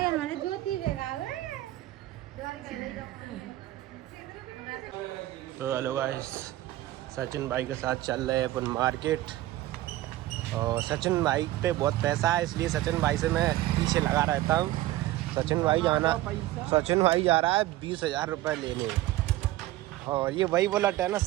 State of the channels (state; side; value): quieter; left; 15.9 dB